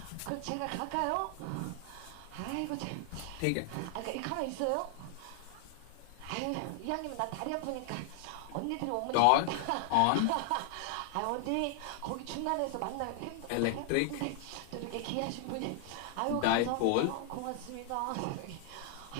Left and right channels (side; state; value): both; different; correlation 0.00